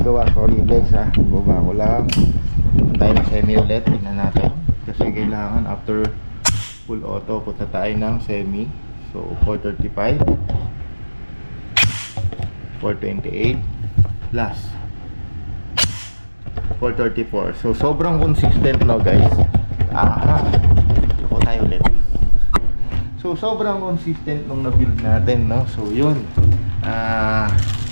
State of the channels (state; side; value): inverted; both; correlation -1.00